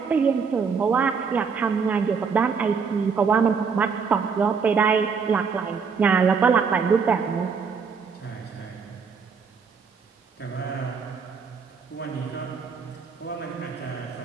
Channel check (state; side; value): quieter; left; 5.7 dB